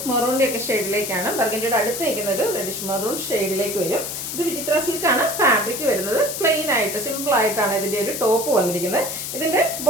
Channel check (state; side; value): noise; left; hiss, 5 dB below the sound